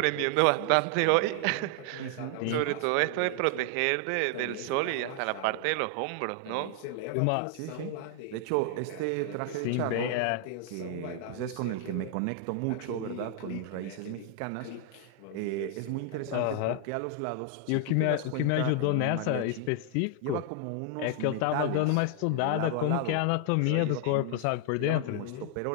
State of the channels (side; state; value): both; different; correlation 0.00